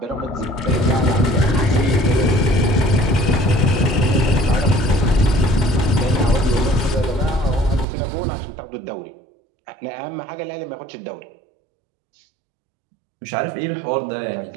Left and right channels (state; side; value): drops out; left; at 7.9 s